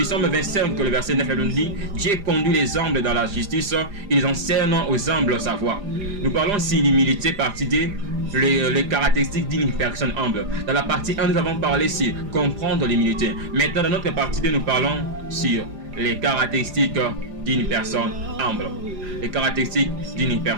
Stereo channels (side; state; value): left; late; 4.9 ms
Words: Psaume 25, le verset 9, nous dit: Dieu conduit les humbles dans la justice, ils enseignent aux humbles sa voie. Nous parlons ici l'humilité, partie D, les caractéristiques d'une personne humble. Dans la partie 1, nous avons parlé sur comprendre l'humilité. Maintenant, dans notre partie 2, nous parlons sur les caractéristiques d'une personne humble. Les caractéristiques d'une